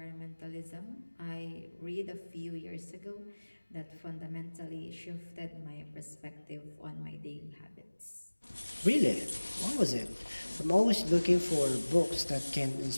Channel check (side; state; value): both; inverted; correlation -1.00